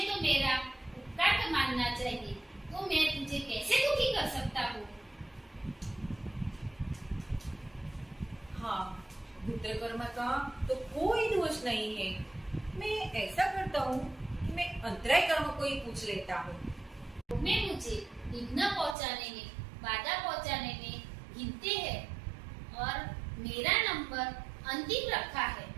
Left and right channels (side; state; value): left; drops out; at 18.9 s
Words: तो मेरा उपकार मानना चाहिए, तो मैं तुझे कैसे दुखी कर सकता हूँ। हाँ, गोत्र कर्म का तो कोई दोष नहीं है। मैं ऐसा करता हूँ कि मैं अंतराय कर्म को ही पूछ लेता हूँ। मैं मुझे विघ्न पहुँचाने में, बाधा पहुँचाने में गिनते हैं और मेरा नंबर अंतिम रखा है।